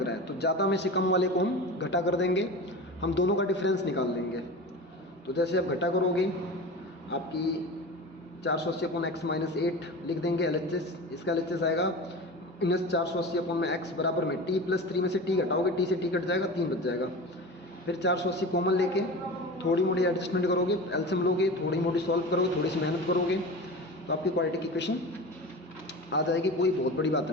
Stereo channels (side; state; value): both; normal; correlation 0.31